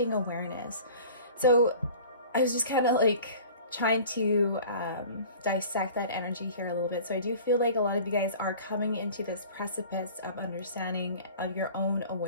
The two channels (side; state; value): both; inverted; correlation -0.44